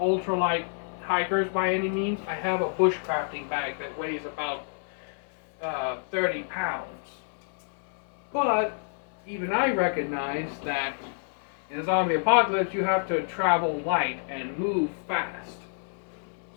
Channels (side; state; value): right; silent; 58 dB below the other